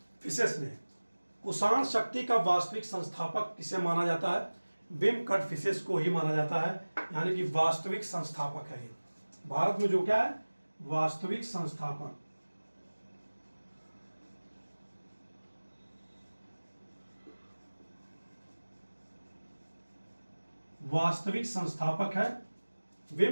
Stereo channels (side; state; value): both; inverted; correlation -1.00